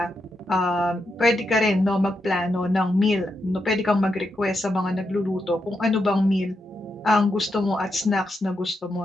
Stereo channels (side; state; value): both; normal; correlation 0.84